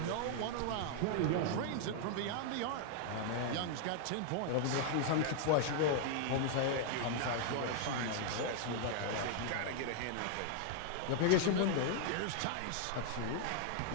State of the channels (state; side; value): different; both; correlation 0.00